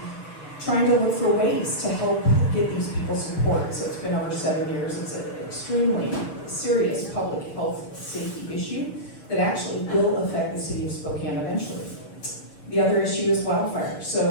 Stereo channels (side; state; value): right; late; 6.8 ms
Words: trying to look for ways to help get these people support. So it's been over 7 years. It's an extremely serious public health safety issue that actually will affect the city of Spokane eventually. The other issue is wildfire.